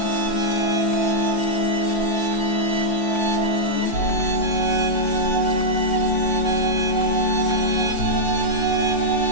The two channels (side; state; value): right; late; 5.8 ms